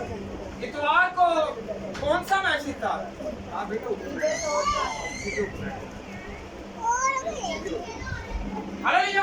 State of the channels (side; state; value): both; identical; correlation 1.00